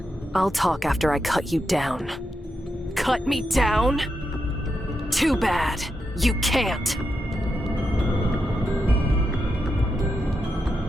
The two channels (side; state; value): both; normal; correlation 0.86